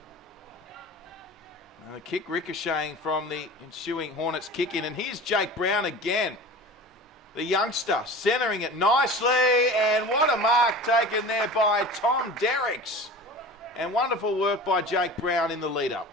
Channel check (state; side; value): normal; both; correlation 0.37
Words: And the kick ricocheting from the ensuing Hornets kick in. And here's Jake Brown again. The youngster centering it nicely. And what a mark taken there by Tom Derricks. And wonderful work by Jake Brown in the lead-up.